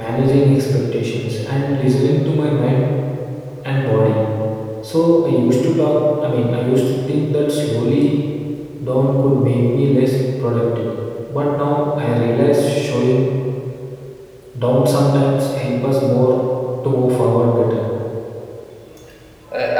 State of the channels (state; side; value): identical; both; correlation 1.00